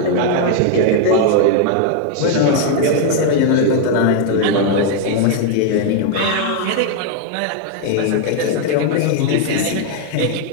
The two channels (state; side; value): different; both; correlation 0.00